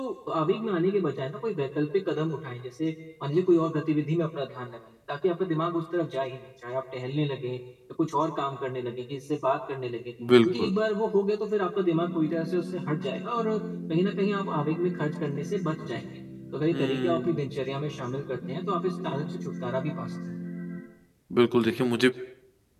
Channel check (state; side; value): identical; both; correlation 1.00